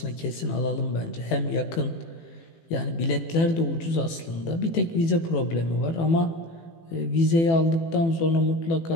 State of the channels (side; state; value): right; late; 18 ms